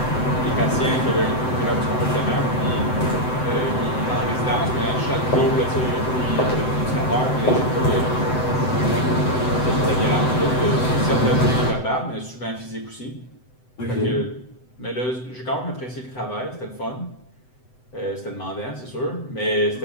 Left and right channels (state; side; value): late; right; 7.9 ms